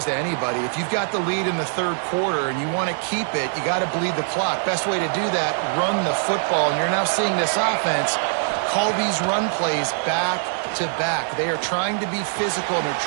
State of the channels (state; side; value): silent; left; digital silence